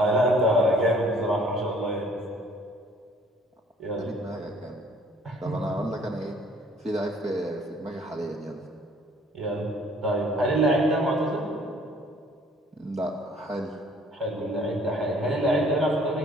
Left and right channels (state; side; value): normal; both; correlation 0.57